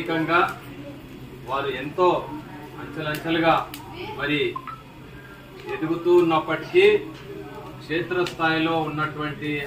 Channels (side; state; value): both; identical; correlation 1.00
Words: వారు ఎంతో అంచెలంచెలుగా మరి ఎదుగుతూ ఉన్నప్పటికీ క్షేత్రస్థాయిలో ఉన్నటువంటి